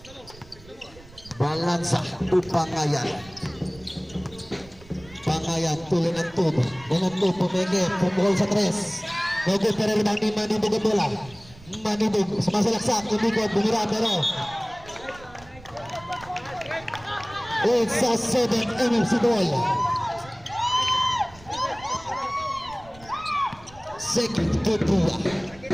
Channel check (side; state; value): right; noise; rumble, 22 dB below the sound